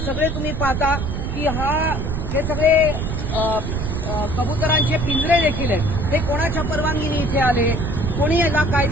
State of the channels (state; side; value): noise; right; rumble, 3 dB below the sound